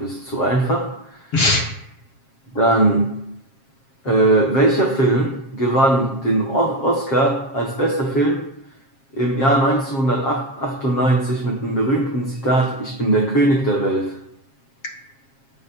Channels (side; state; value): right; late; 7.4 ms